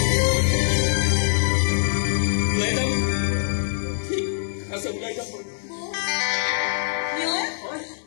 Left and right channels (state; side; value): silent; right; digital silence